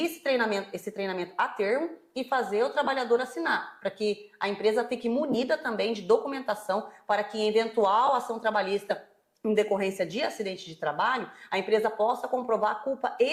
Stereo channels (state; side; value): identical; both; correlation 1.00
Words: esse treinamento a termo e fazer o trabalhador assinar, para que a empresa fique munida também de documentação para que em eventual ação trabalhista em decorrência de acidente de trabalho, a empresa possa comprovar a culpa